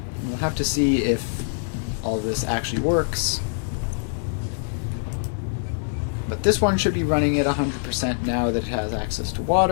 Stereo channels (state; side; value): silent; right; digital silence